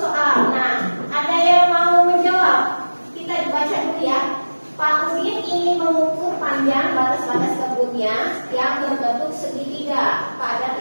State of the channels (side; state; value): both; inverted; correlation -1.00